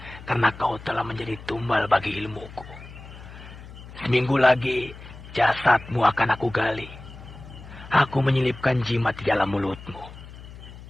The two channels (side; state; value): left; noise; hum, 16 dB below the sound